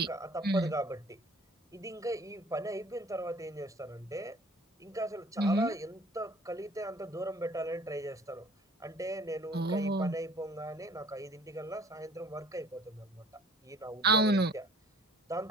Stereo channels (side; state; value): both; normal; correlation 0.53